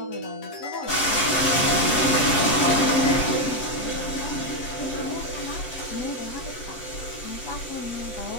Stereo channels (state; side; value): late; right; 7.5 ms